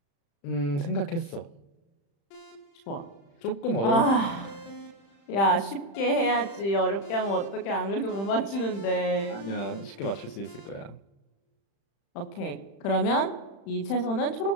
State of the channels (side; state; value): right; late; 35 ms